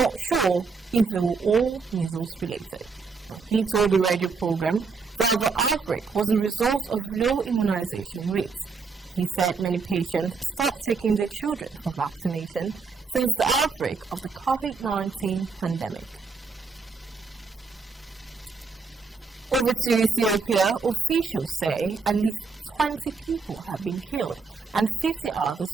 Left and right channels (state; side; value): quieter; left; 4.7 dB